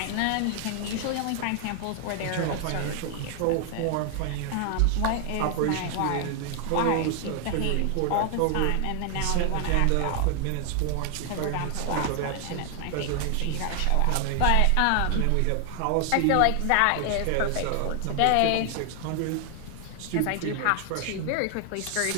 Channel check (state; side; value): different; both; correlation 0.00